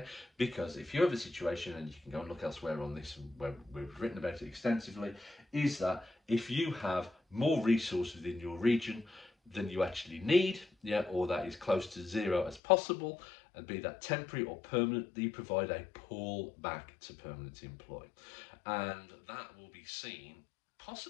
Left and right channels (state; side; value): drops out; right; at 12.6 s